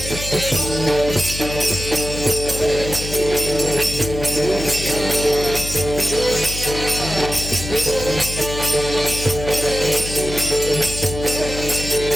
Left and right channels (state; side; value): noise; left; hum, 8 dB below the sound